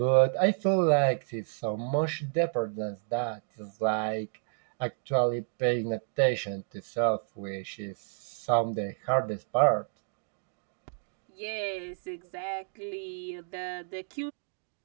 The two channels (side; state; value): left; silent; digital silence